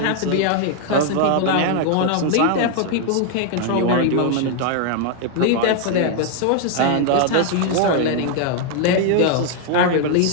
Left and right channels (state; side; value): different; both; correlation 0.00